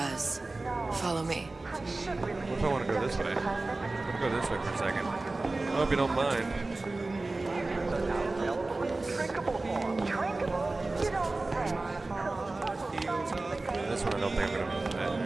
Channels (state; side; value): quieter; left; 3.2 dB